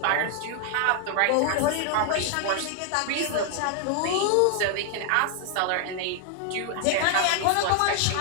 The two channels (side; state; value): both; different; correlation 0.00